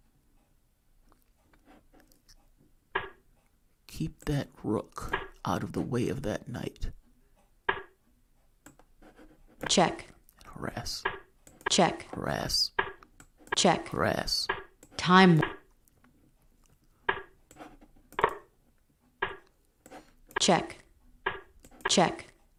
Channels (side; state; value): both; identical; correlation 1.00